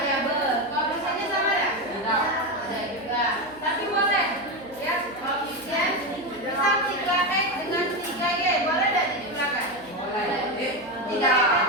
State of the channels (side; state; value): right; noise; hum, 23 dB below the sound